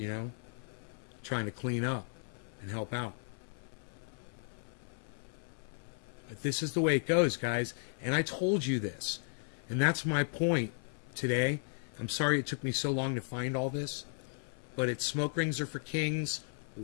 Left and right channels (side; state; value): right; silent; 54 dB below the other